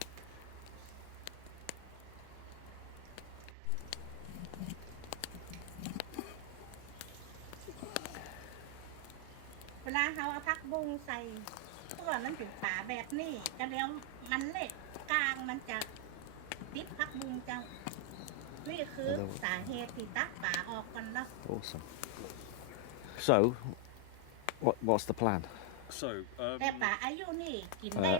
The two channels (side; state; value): both; different; correlation 0.00